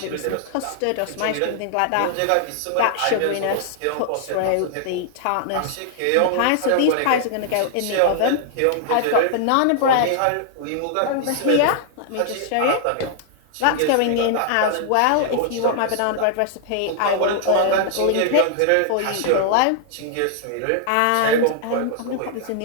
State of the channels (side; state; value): both; different; correlation -0.01